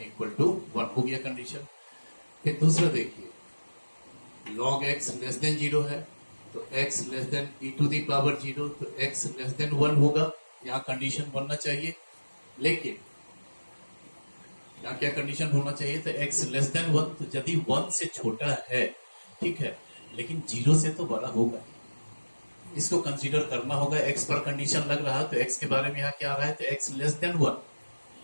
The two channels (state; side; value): inverted; both; correlation -1.00